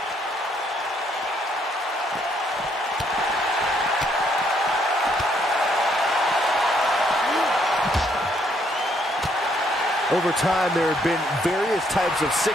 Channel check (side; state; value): both; normal; correlation 0.70